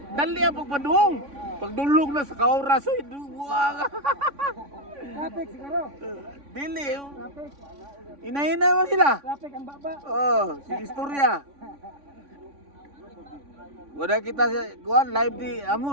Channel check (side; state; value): left; late; 3.5 ms